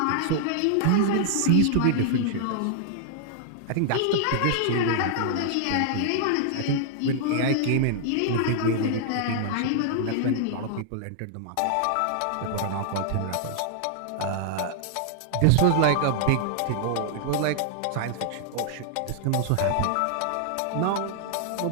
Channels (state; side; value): different; both; correlation -0.01